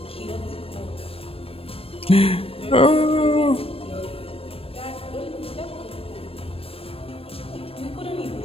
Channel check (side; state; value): right; late; 0.28 ms